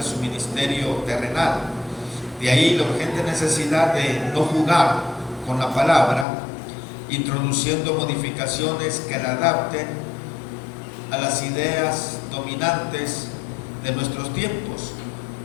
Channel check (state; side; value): drops out; right; at 6.2 s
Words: ministerio terrenal. De ahí la urgente necesidad de no jugar con la palabra, introduciendo modificaciones que la adapten a las ideas dominantes de nuestros tiempos.